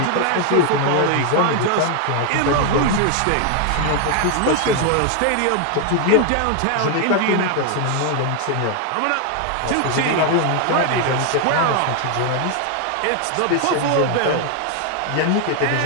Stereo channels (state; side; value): different; both; correlation 0.00